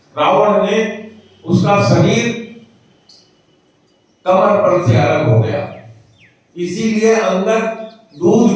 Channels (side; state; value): both; identical; correlation 1.00